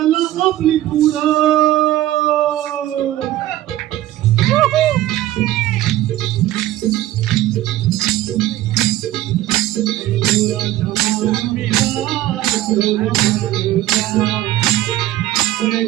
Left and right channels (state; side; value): quieter; left; 14.7 dB